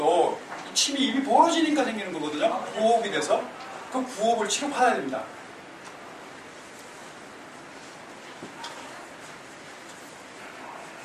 침이 입이 벌어지니까 생기는 거거든요. 부호흡이 돼서 그 부호흡을 치료받아야 됩니다.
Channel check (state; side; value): identical; both; correlation 1.00